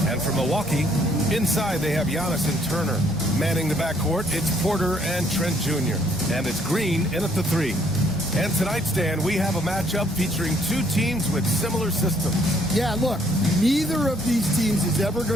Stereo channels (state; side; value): normal; both; correlation 0.66